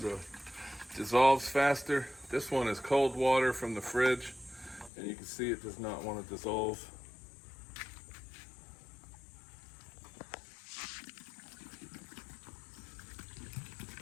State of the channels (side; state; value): right; drops out; at 4.9 s